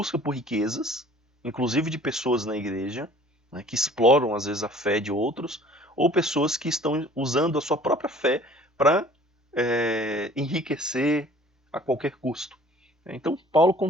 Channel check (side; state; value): both; normal; correlation 0.51